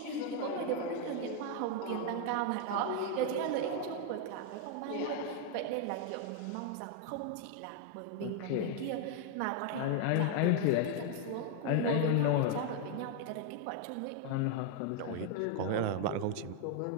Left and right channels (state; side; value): different; both; correlation 0.00